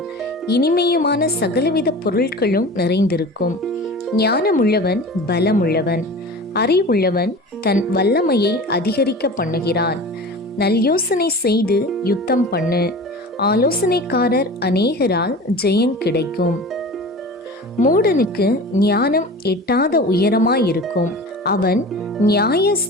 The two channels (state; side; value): normal; both; correlation 0.36